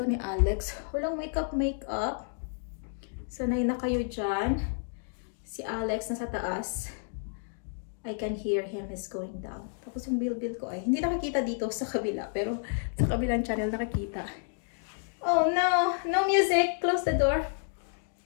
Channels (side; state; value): right; silent; digital silence